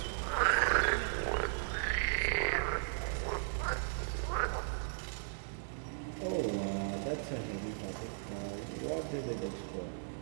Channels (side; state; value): left; silent; digital silence